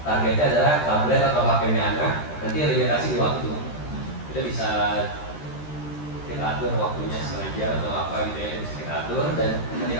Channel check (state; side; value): late; right; 13 ms